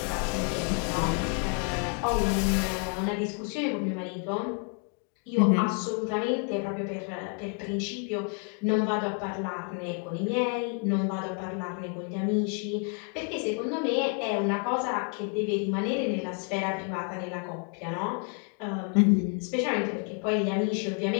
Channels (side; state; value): right; quieter; 37.7 dB